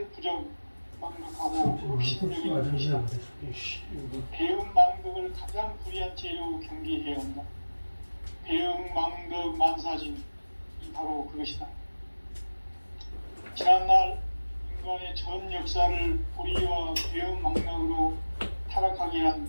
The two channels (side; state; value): both; inverted; correlation -1.00